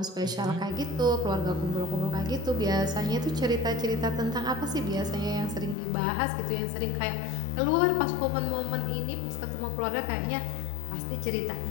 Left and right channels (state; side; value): drops out; right; at 5.8 s